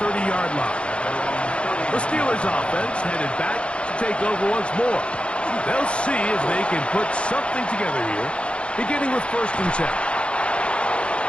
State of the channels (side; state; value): right; late; 0.058 ms